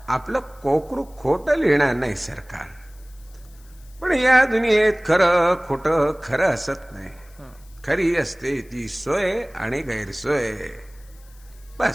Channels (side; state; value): left; noise; hiss, 28 dB below the sound